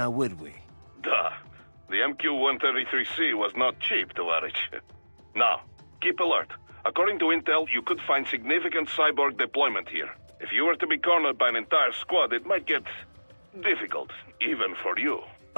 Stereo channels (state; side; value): inverted; both; correlation -1.00